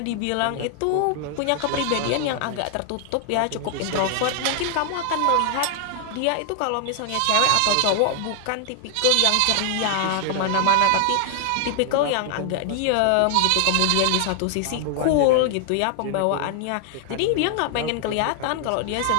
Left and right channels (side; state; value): both; different; correlation 0.00